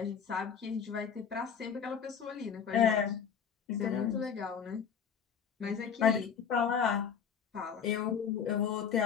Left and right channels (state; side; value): quieter; right; 7.2 dB